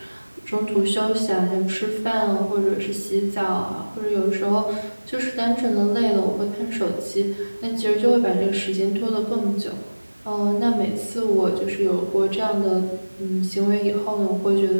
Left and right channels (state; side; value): inverted; both; correlation -1.00